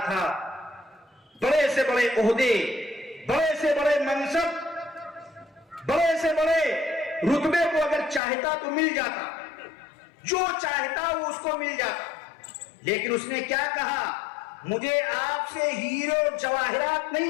تھا، بڑے سے بڑے عہدے، بڑے سے بڑے منصب، بڑے سے بڑے رتبے کو اگر چاہتا تو مل جاتا، جو چاہتا وہ اس کو مل جاتا، لیکن اس نے کیا کہا؟ مجھے آپ سے ہیرے اور جواہرات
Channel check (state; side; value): drops out; right; at 8.2 s